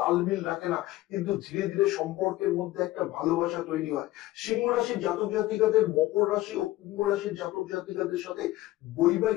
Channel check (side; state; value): right; quieter; 17.0 dB